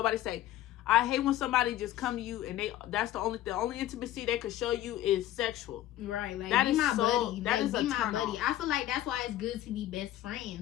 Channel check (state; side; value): quieter; right; 13.4 dB